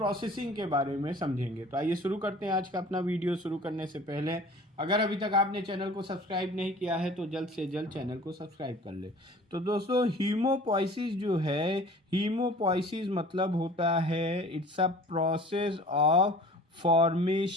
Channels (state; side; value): normal; both; correlation 0.45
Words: के बारे में समझेंगे। तो आइए शुरू करते हैं आज का अपना वीडियो। शुरू करने से पहले अगर अभी तक आपने चैनल को सब्सक्राइब नहीं किया है तो जल्द से जल्द चैनल को सब्सक्राइब कर ले। तो दोस्तों, हीमोपोइसिस जो है, हीमोपोइसिस मतलब होता है it's a process of